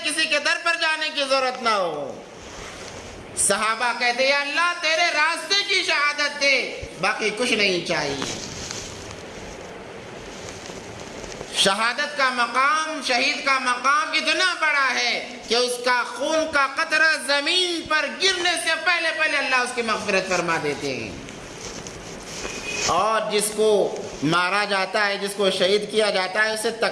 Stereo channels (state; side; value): identical; both; correlation 1.00